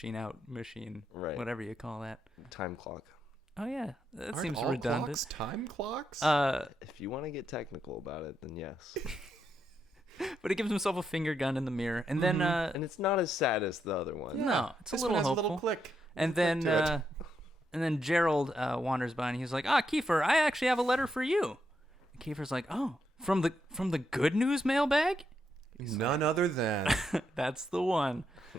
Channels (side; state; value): both; normal; correlation 0.81